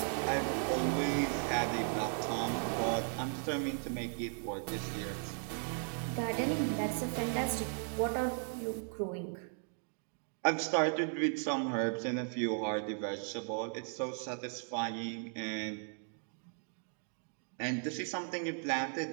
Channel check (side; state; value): left; silent; 53 dB below the other